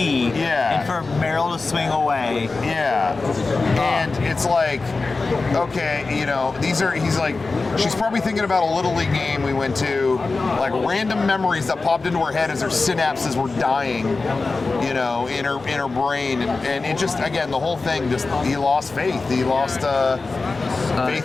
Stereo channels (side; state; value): right; quieter; 3.8 dB